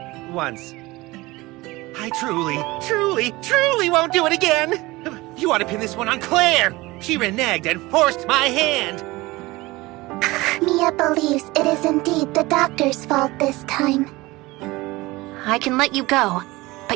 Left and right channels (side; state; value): left; quieter; 20.9 dB